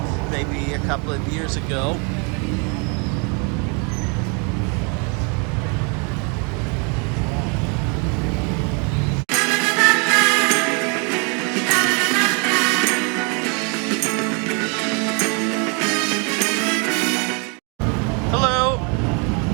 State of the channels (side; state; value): left; quieter; 34.6 dB